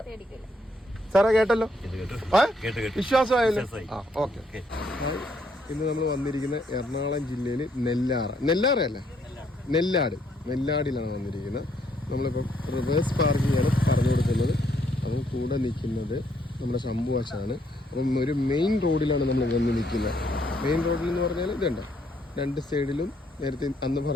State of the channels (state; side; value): normal; both; correlation 0.71